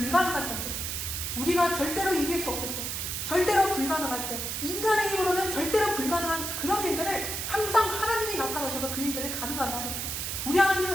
전쟁, 우리가 절대로 이길 수 없을 때, 절대로 불가능할 때, 인간의 힘으로는 절대로 불가능한 그런 일들을 항상 하나님이 나타나셔서 그 일들을 가능하게 하셨어. 우리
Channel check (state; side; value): noise; right; hiss, 3 dB below the sound